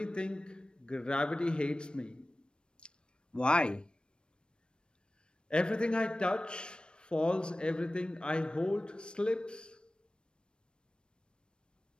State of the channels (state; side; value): late; right; 0.054 ms